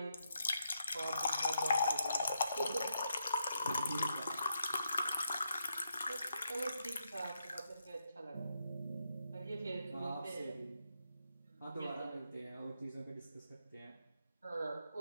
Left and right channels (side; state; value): both; inverted; correlation -0.80